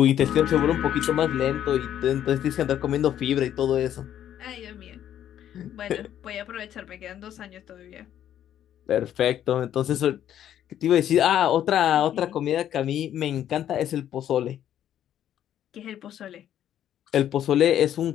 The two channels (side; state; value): right; quieter; 10.8 dB